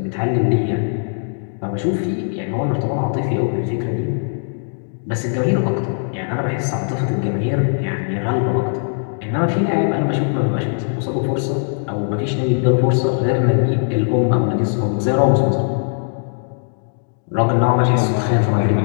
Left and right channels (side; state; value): right; silent; digital silence